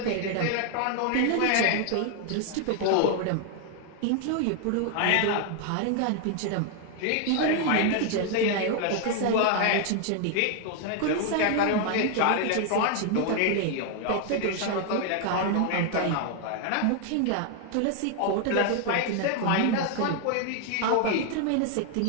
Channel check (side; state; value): both; different; correlation 0.00